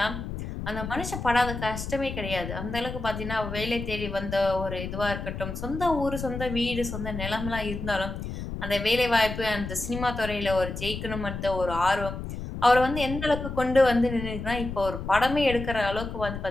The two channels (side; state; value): left; noise; rumble, 7 dB below the sound